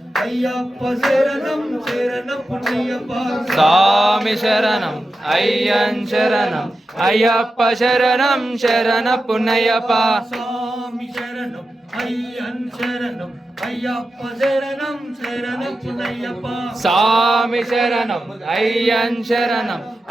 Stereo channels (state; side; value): normal; both; correlation 0.91